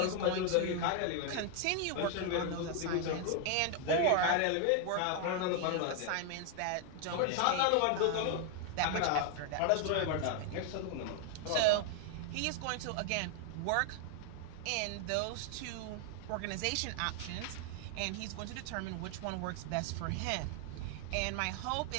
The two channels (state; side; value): different; both; correlation 0.01